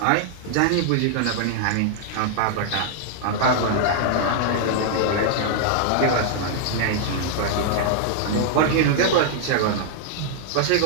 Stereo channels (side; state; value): both; different; correlation -0.01